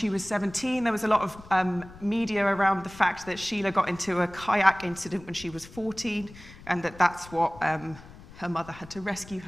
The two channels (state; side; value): noise; left; rumble, 19 dB below the sound